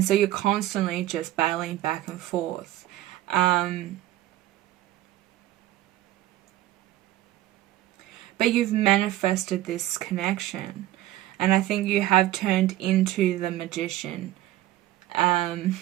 so you're constantly just battling back and forth. But you've manifested this connection. And I think you have turned into the magician.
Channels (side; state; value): left; quieter; 15.0 dB